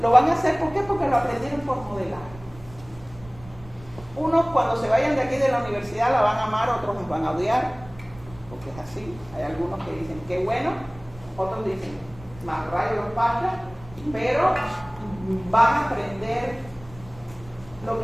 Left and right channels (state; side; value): noise; right; rumble, 20 dB below the sound